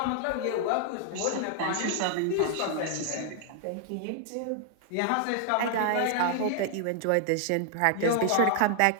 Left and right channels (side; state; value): both; different; correlation 0.00